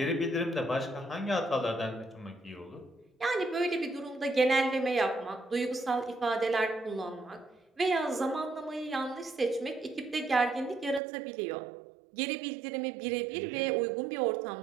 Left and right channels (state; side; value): drops out; left; at 11.0 s